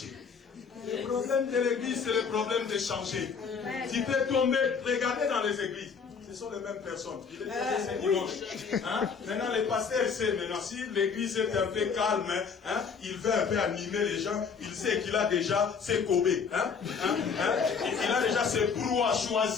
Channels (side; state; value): right; quieter; 5.9 dB